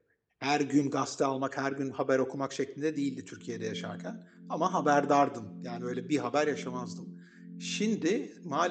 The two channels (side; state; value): both; identical; correlation 1.00